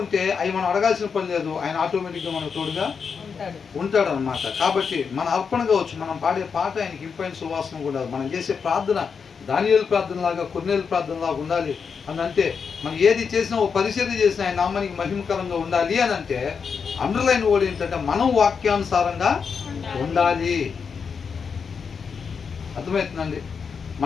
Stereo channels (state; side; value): quieter; right; 6.0 dB